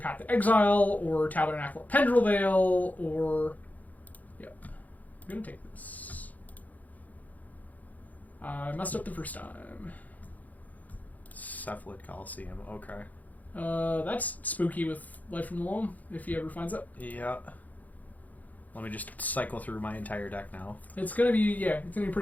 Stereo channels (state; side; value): late; right; 0.078 ms